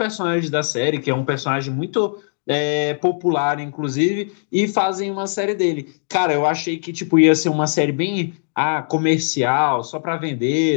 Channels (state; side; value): silent; right; digital silence